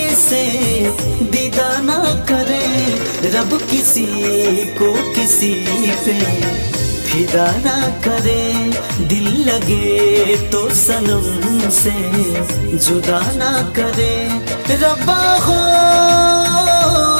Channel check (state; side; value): inverted; both; correlation -1.00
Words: से दीदा ना करे। रब किसी को किसी पे फिदा ना करे, दिल लगे तो सनम से जुदा ना करे। रब्बा हो